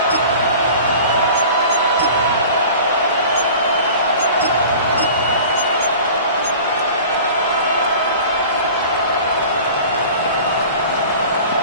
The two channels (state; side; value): inverted; both; correlation -0.41